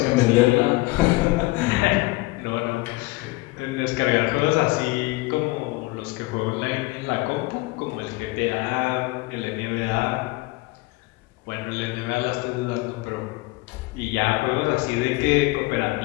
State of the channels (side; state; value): right; quieter; 21.7 dB